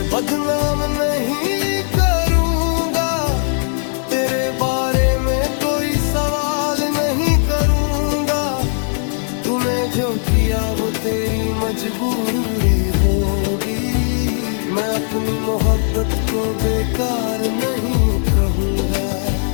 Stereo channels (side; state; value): right; silent; digital silence